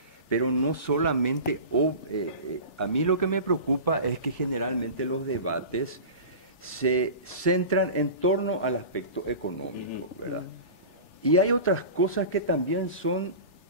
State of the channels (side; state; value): right; late; 3.4 ms